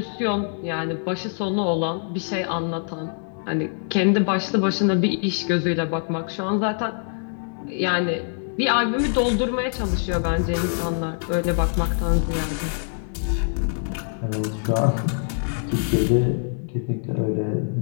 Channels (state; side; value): silent; right; digital silence